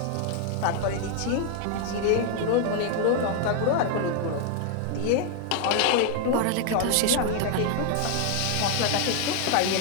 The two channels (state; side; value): different; both; correlation 0.00